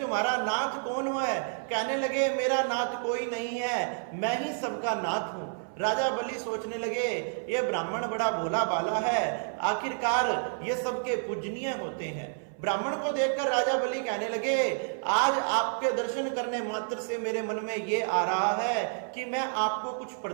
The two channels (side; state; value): left; silent; 58 dB below the other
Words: नाथ कौन है। कहने लगे मेरा नाथ कोई नहीं है, मैं ही सबका नाथ हूं। राजा बलि सोचने लगे ये ब्राह्मण बड़ा भोला भाला है, आखिरकार ये सबके पूजनीय होते हैं। ब्राह्मण को देखकर राजा बलि कहने लगे आज आपके दर्शन करने मात्र से मेरे मन में ये आ रहा है कि मैं आपको कुछ